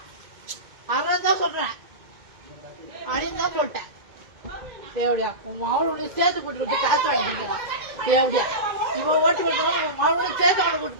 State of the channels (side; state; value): left; late; 2.1 ms